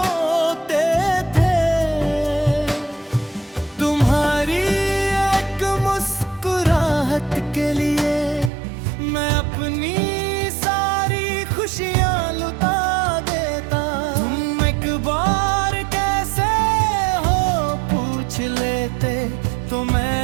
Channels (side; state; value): left; drops out; at 8.5 s